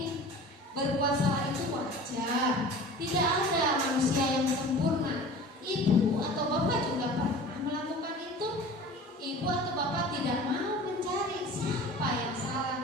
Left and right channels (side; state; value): both; normal; correlation 0.40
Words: Berbuat salah itu wajar. Tidak ada manusia yang sempurna. Ibu atau bapak juga pernah melakukan itu. Ibu atau bapak tidak mau mencari siapa yang